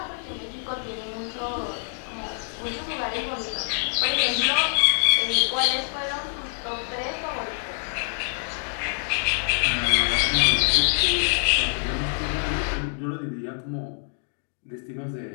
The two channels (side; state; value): right; silent; 61 dB below the other